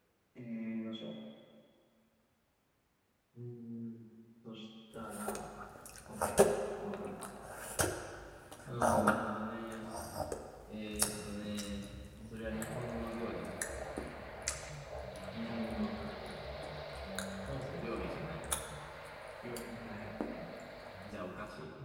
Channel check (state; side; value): identical; both; correlation 1.00